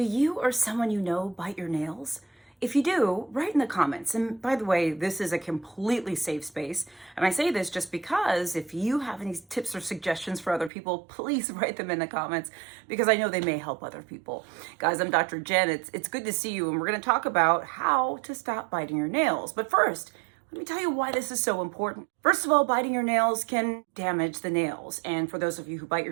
you or someone you know bite your nails? If you do, write in the comments. And by the way, this is a completely safe space. And I say this just because if you have any tips or suggestions for other people, please write them in the comments because I know they may help other people. Guys, I'm Dr. Jen. It's good to see you. And we're going to talk about how to stop biting your nails. But first, let me tell you why this is so important. First of all, biting your nails can damage the nails. And for those of you who bite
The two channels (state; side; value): drops out; left; at 10.7 s